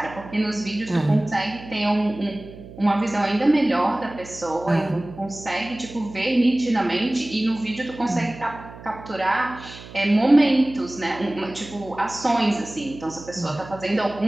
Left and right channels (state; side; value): noise; right; hum, 16 dB below the sound